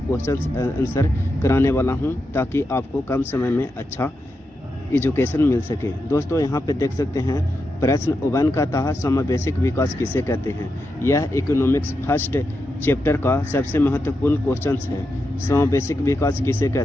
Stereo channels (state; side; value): normal; both; correlation 0.87